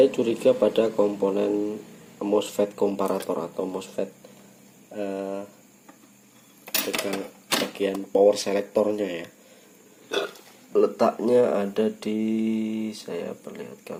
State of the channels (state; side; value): identical; both; correlation 1.00